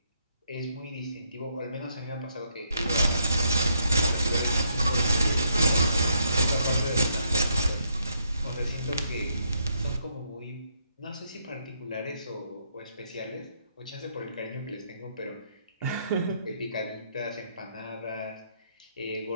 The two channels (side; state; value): both; inverted; correlation -0.74